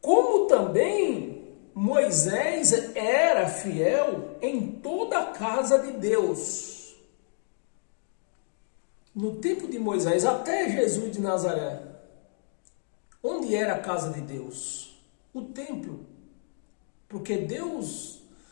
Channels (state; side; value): silent; right; 59 dB below the other